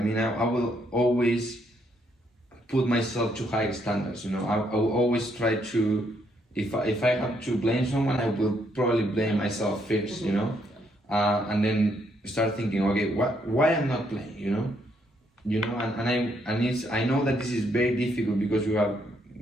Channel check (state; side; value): normal; both; correlation 0.73